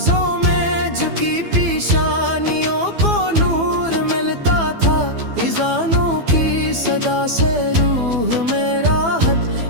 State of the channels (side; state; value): left; late; 12 ms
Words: میں جھکی پیشانیوں کو نور ملتا تھا، اذانوں کی صدا سے روح میں